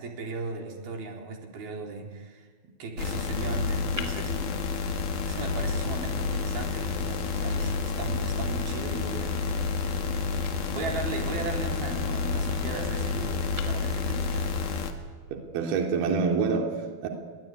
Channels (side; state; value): left; late; 12 ms